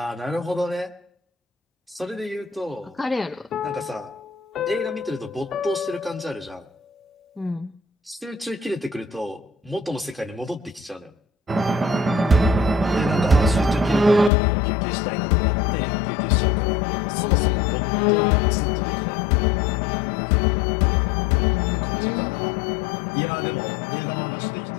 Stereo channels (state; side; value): drops out; right; at 14.3 s